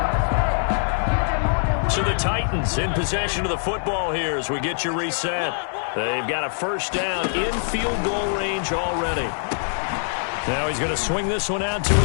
So the Titans in possession of the football here as we get you reset. They've got a first down in field goal range already. Now he's going to swing this one out to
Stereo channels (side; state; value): right; silent; digital silence